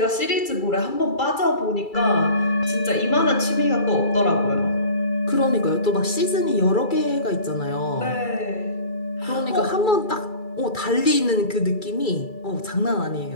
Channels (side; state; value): right; late; 2.3 ms